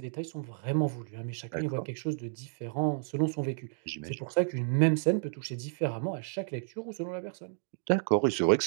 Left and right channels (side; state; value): left; silent; digital silence